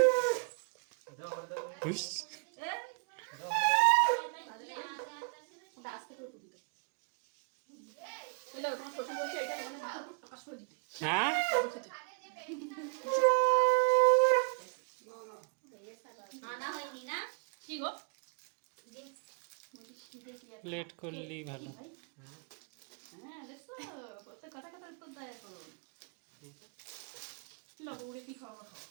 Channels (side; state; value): left; quieter; 37.8 dB